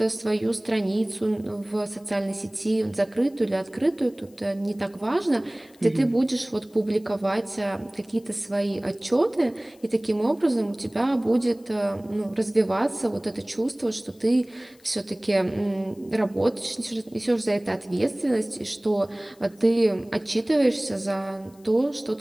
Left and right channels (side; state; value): left; noise; hiss, 29 dB below the sound